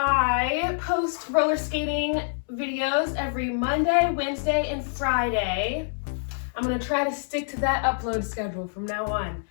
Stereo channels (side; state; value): right; silent; digital silence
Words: post roller skating videos every Monday, Wednesday, and Friday. I'm going to try to stick to that upload schedule from now on.